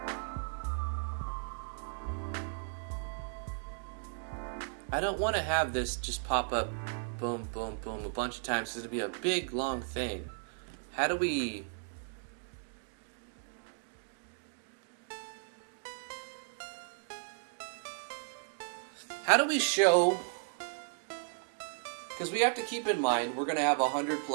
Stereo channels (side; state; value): left; silent; digital silence